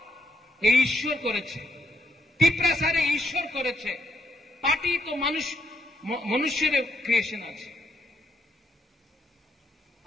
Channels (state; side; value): normal; both; correlation 0.76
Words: এই ঈশ্বর করেছে, ত্রিপুরাসারে ঈশ্বর করেছে। পার্টি তো মানুষ মনুষ্যের ক্রিয়েশন আছে।